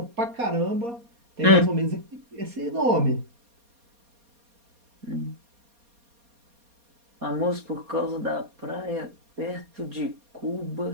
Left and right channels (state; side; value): late; left; 4.2 ms